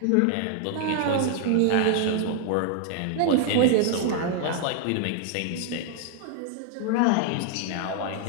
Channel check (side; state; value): both; different; correlation 0.00